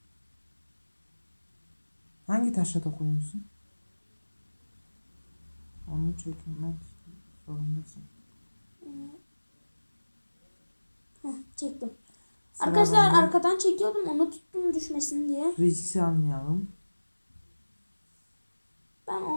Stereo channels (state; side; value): inverted; both; correlation -1.00